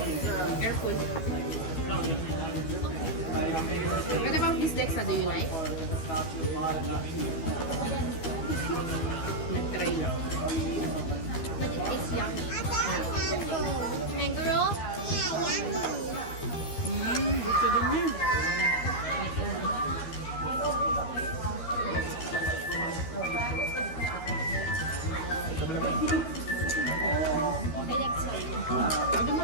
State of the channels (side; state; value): right; late; 12 ms